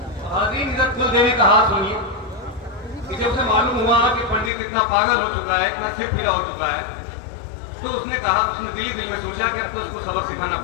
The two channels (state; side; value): drops out; right; at 4.5 s